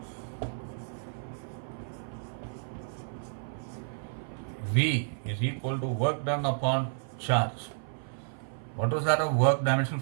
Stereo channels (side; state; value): left; silent; 55 dB below the other